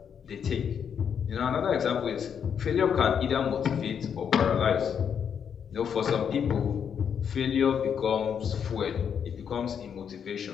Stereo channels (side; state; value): right; quieter; 7.7 dB